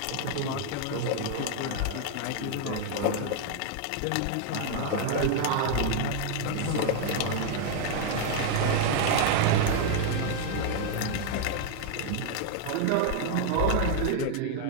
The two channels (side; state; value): both; different; correlation 0.00